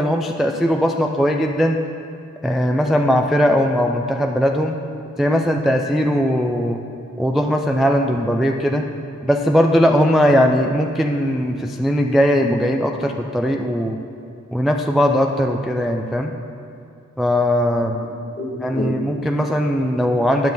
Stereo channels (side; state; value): both; normal; correlation 0.80